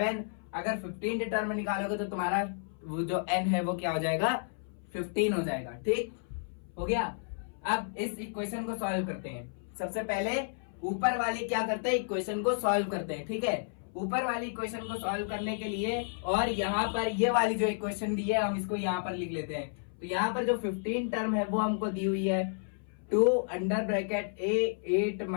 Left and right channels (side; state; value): right; silent; 57 dB below the other